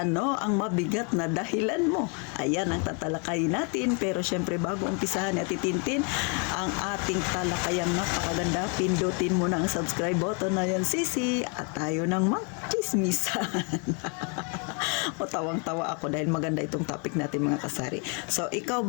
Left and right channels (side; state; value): right; quieter; 35.8 dB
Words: ang mabigat na dahilan mo? Ayan ang tatalakayin natin, pero syempre bago umpisahan at itintin ang ating talakayang napakaganda, pindutin mo na ang subscribe button na yan, sisi, at tayo nang magchismisan. O tawang-tawa ako dahil maganda itong topic natin, mga kasari. So, ikaw